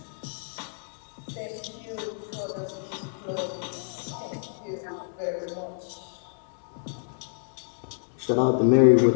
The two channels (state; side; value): silent; right; digital silence